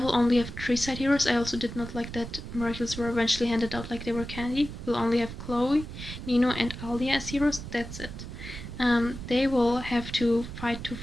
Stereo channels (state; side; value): noise; right; rumble, 10 dB below the sound